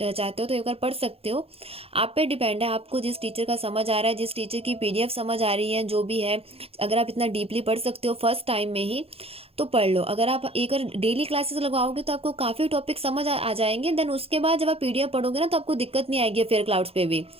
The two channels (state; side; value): late; left; 0.28 ms